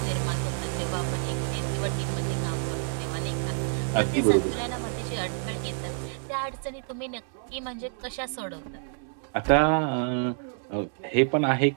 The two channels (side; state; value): left; silent; 59 dB below the other